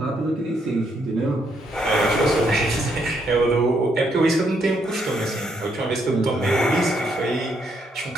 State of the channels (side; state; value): both; normal; correlation 0.74